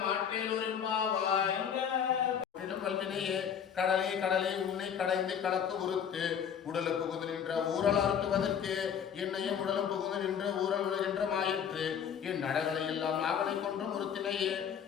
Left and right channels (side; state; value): right; quieter; 8.0 dB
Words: மாற்றேலூரின்பாவாய் வல்வினையே கடலே கடலே உன்னை கடைந்து கலக்கு உறுத்து உடலுக்கு புகுந்து நின்ற ஊரல் அறுத்துவதற்கு என்னையும் உடலும் புகுந்து நின்ற ஊரல் உலகின்ற மாயிற்று என் நடகளை எல்லாம் நாகனை கொன்றும் உறுத்தினையே